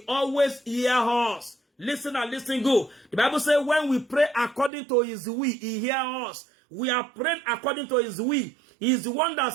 always hears us. Listen and listen good. The Bible says when we pray according to his will, he hears us. We are praying according to his will. He is the one that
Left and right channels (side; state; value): left; drops out; at 4.7 s